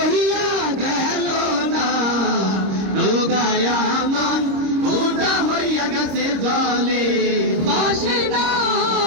গেল না। নৌকায় আমার ফুটা হইয়া গেছে জলে ভাসে না।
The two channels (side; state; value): left; late; 26 ms